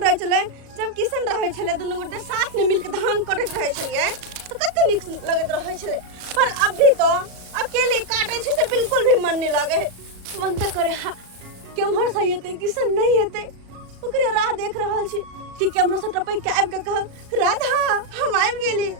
रहे छले जब किसन रहे छले दोनों गोटे साथ में मिलके धान काटत रहे छलिए तो कते निक लगत रहे छले। पर अभी तो अकेले काटे छै से बिल्कुल भी मन नहीं लागे है। मन त करे केम्हर से हेते किसन नहीं हेते, ओकरे राह देख रहल छी कि केम्हर से टपै के आबि के कह राधा हम आबि गेली।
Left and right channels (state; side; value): late; left; 37 ms